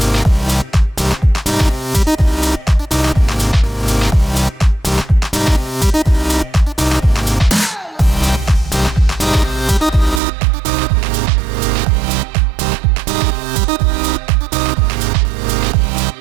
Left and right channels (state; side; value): drops out; left; at 10.2 s